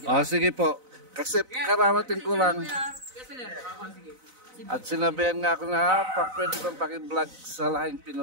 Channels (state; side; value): late; left; 4.0 ms